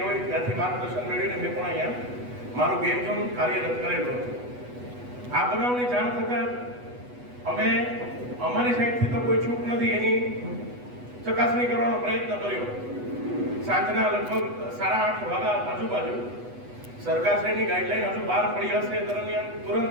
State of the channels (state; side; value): late; left; 8.1 ms